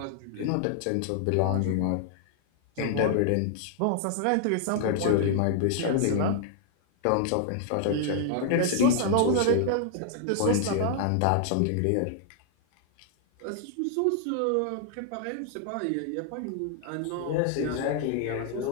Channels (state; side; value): different; both; correlation -0.01